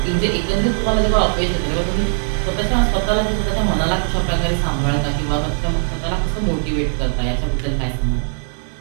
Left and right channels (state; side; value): silent; left; 56 dB below the other